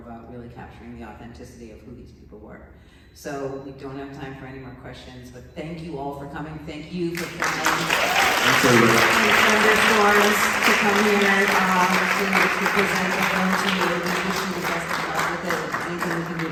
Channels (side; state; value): both; identical; correlation 1.00